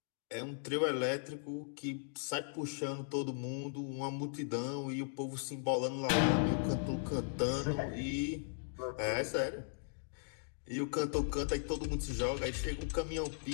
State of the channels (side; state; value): right; silent; digital silence